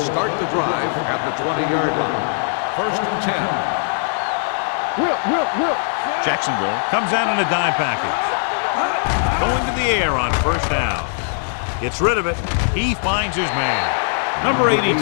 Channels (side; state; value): right; silent; 60 dB below the other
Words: the drive at the 20-yard line. First and 10. Whip. Jacksonville comes out in a dime package. Going to the air on first down. Gets rid of it. He finds his man. Number 82